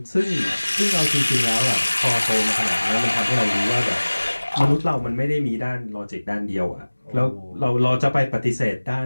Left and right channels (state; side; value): inverted; both; correlation -1.00